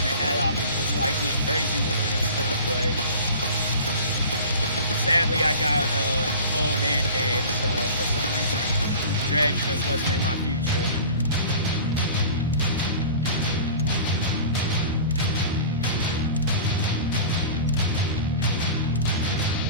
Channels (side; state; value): both; inverted; correlation -0.39